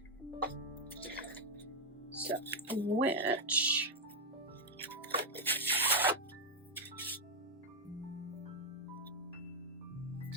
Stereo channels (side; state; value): both; normal; correlation 0.01